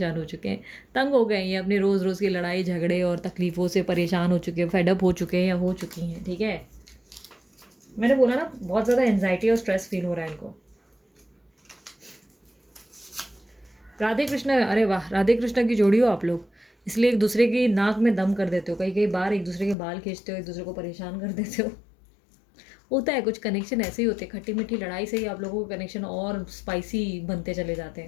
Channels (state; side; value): drops out; right; at 19.8 s